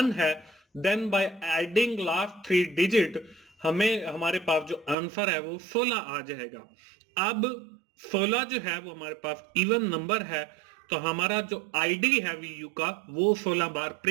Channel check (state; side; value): drops out; left; at 5.0 s